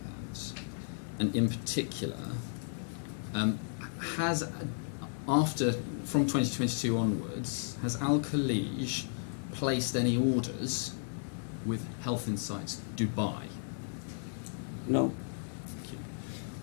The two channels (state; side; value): silent; right; 55 dB below the other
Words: And in particular, from 2022 onwards, has Al Khalij placed any orders with Health Insights Dubai? No.